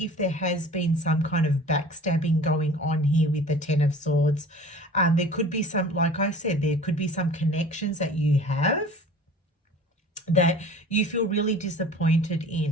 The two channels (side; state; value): both; normal; correlation 0.44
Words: if there has been some kind of backstabbing going on here with the Ten of Swords. There could be some, like I said, there could be some connections that you have that you feel really disappointed